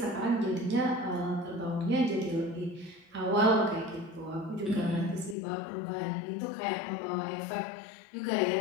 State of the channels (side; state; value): right; drops out; at 5.4 s